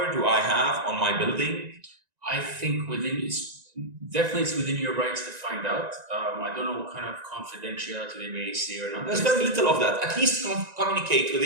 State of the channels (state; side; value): late; left; 1.9 ms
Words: do I have on my building? I think it's within your rights to find out. I don't know what kind of confidentiality they may say or not. There's very little of that. At least communicate with